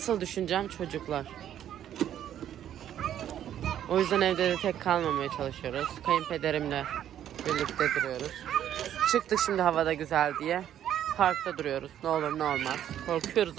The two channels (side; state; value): left; quieter; 10.7 dB